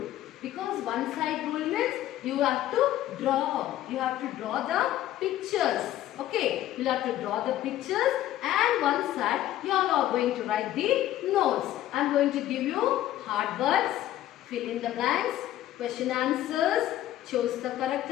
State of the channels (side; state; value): right; quieter; 13.5 dB